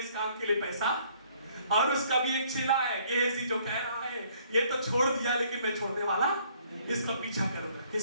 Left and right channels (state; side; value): inverted; both; correlation -0.62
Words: काम के लिए पैसा, और उसका भी एक चेला है गेहजी जो कह रहा है ये तो छोड़ दिया लेकिन मैं छोड़ने वाला, इसका पीछा करूंगा।